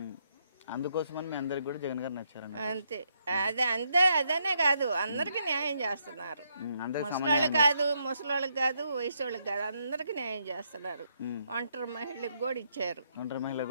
అందుకోసమని మీ అందరికి కూడా జగన్ గారు నచ్చారండి అంతే. అదనే కాదు, అందరికి న్యాయం చేస్తున్నారు. ముసలోళ్ళకి కాదు, వయసు వాళ్ళకి కాదు, అందరికి న్యాయం చేస్తున్నారు. ఒంటరి మహిళలకు కూడా ఇచ్చారు. ఒంటరి మహిళలకు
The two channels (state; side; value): inverted; both; correlation -0.77